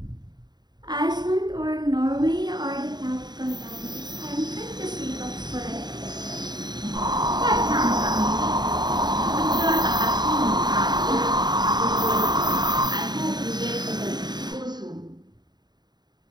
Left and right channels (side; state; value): left; late; 0.20 ms